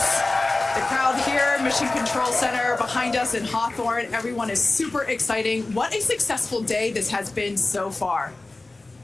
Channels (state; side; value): quieter; right; 3.1 dB